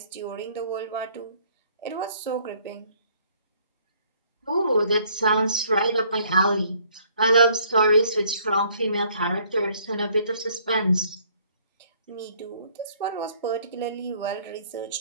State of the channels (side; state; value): both; inverted; correlation -0.62